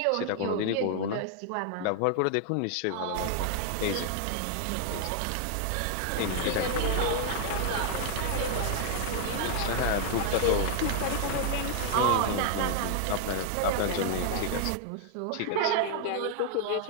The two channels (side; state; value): both; different; correlation 0.00